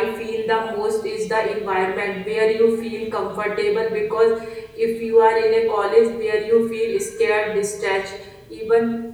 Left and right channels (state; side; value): identical; both; correlation 1.00